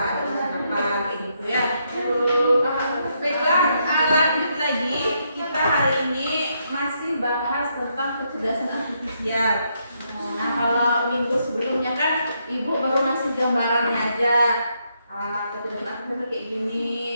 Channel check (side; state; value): both; inverted; correlation -0.77